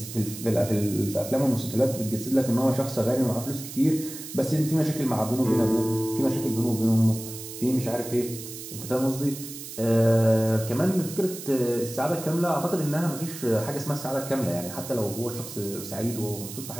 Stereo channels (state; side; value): noise; right; hiss, 11 dB below the sound